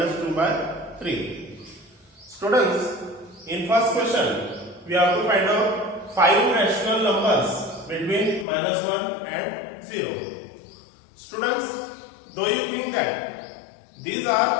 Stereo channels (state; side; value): drops out; right; at 8.5 s